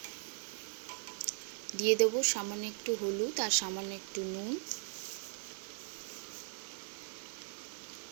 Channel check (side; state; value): left; silent; digital silence